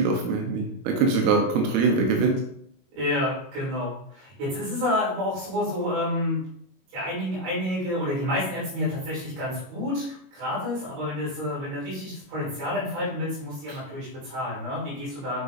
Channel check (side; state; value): left; late; 22 ms